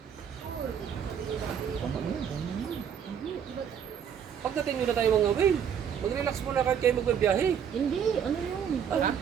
Pagdating nyo na tayo mga whale, mag-relax muna kahit kayo magbabiyahe. Hindi, ano yun? Ha?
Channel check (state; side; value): quieter; left; 8.1 dB